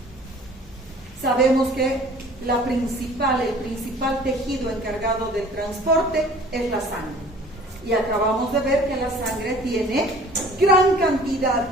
Sabemos que el principal tejido encargado del transporte es la sangre. Y acabamos de ver que la sangre tiene gran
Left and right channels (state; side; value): normal; both; correlation 0.49